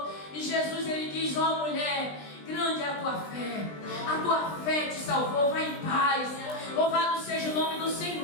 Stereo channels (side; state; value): right; late; 20 ms